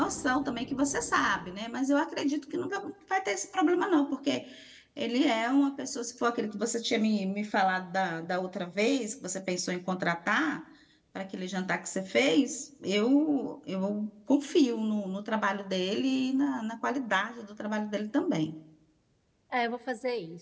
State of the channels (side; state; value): both; identical; correlation 1.00